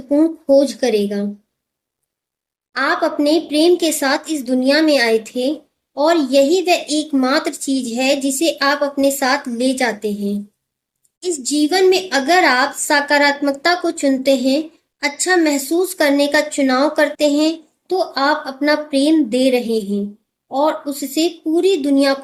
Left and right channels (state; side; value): identical; both; correlation 1.00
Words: खोज करेगा। आप अपने प्रेम के साथ इस दुनिया में आए थे और यही वह एकमात्र चीज है जिसे आप अपने साथ ले जाते हैं। इस जीवन में अगर आप सकारात्मकता को चुनते हैं, अच्छा महसूस करने का चुनाव करते हैं, तो आप अपना प्रेम दे रहे हैं और उससे पूरी दुनिया